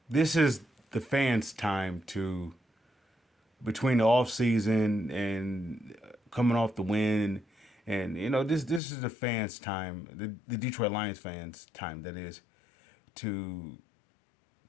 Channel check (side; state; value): right; drops out; at 8.8 s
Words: this is the fans' time to between the off season and coming off the win, and this is the fans' time, the Detroit Lions fans' time. That is to